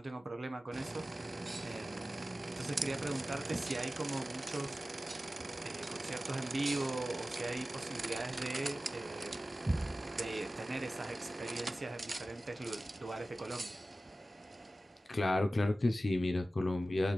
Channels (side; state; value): both; normal; correlation 0.95